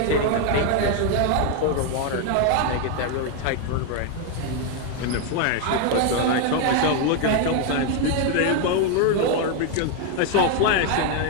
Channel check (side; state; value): both; different; correlation 0.01